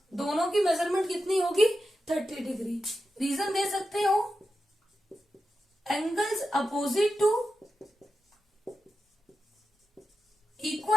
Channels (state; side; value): normal; both; correlation 0.90